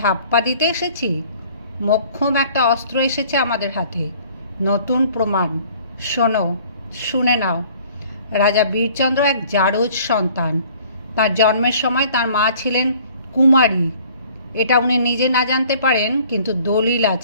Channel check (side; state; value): both; inverted; correlation -0.54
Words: ধাপ্পা দিতে এসেছি? মোক্ষম একটা অস্ত্র এসেছে আমাদের হাতে, নতুন প্রমাণ। শোনো, শুনে নাও। রাজা বীরচন্দ্র এক জারজ সন্তান। তার জন্মের সময় তার মা ছিলেন কুমারী। এটা উনি নিজে না জানতে পারেন, কিন্তু দলিল